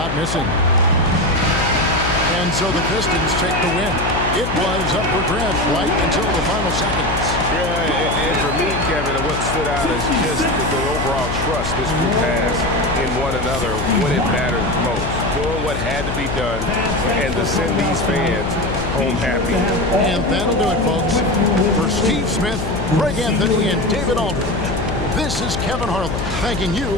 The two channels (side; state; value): left; noise; hum, 4 dB below the sound